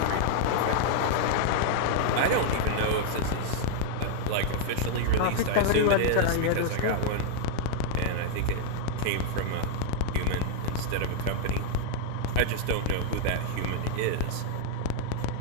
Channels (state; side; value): different; both; correlation 0.00